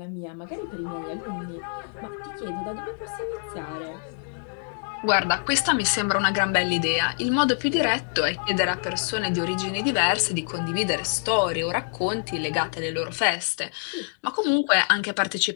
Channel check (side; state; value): right; silent; 61 dB below the other